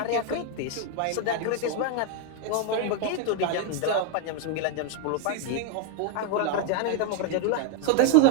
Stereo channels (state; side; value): different; both; correlation 0.00